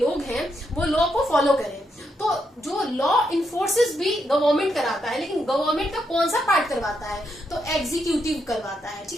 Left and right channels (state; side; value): normal; both; correlation 0.80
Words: हैं वो लॉ को फॉलो करें। तो जो लॉ इन्फोर्सेस भी गवर्नमेंट कराता है, लेकिन गवर्नमेंट का कौन सा पार्ट करवाता है, तो एग्जीक्यूटिव करवाता है,